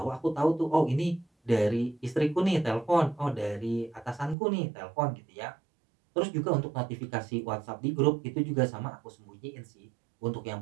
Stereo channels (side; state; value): left; drops out; at 4.4 s